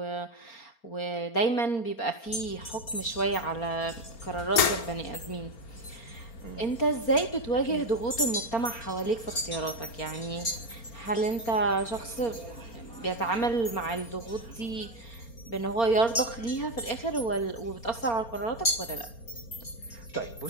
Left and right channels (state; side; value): late; right; 4.3 ms